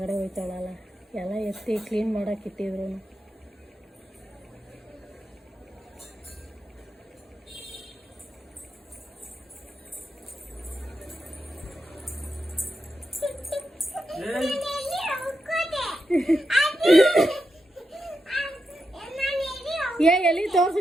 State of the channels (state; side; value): normal; both; correlation 0.87